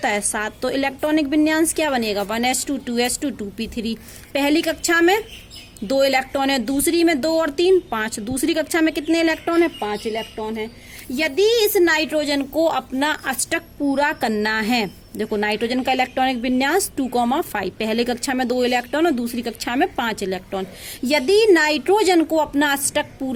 है? 7। तो इलेक्ट्रॉनिक विन्यास क्या बनेगा? 1s2 2s2 2p3। पहली कक्षा में 2 इलेक्ट्रॉन है, दूसरी में 2 और 3 5। दूसरी कक्षा में कितने इलेक्ट्रॉन है? 5 इलेक्ट्रॉन है। यदि इस नाइट्रोजन को अपना अष्टक पूरा करना है, देखो नाइट्रोजन का इलेक्ट्रॉनिक विन्यास 2,5, पहले कक्षा में 2 इलेक्ट्रॉन और दूसरी कक्षा में 5 इलेक्ट्रॉन। यदि नाइट्रोजन को अपना अष्टक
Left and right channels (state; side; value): identical; both; correlation 1.00